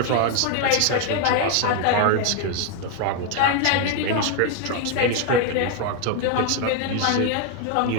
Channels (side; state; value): both; different; correlation 0.01